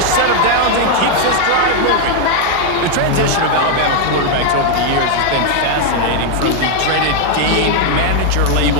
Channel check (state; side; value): different; both; correlation 0.01